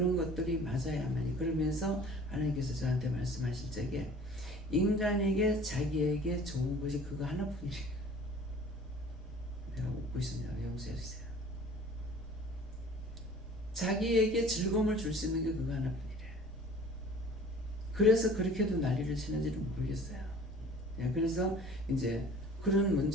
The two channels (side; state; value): both; normal; correlation 0.47